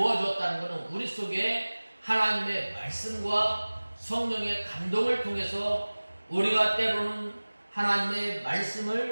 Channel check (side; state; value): both; inverted; correlation -1.00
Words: 것은 우리 속에 하나님의 말씀과 성령의 감동을 통해서 우리가 때로는 하나님의